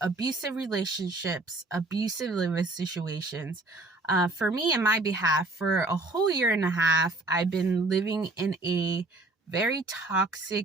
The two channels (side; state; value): left; quieter; 3.1 dB